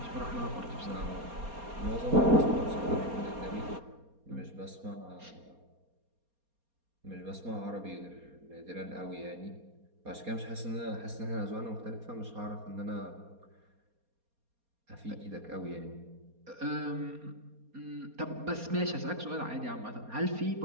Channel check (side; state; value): left; late; 4.3 ms